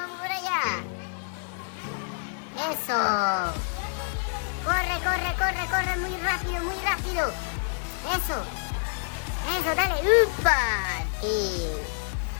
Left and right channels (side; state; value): right; silent; 60 dB below the other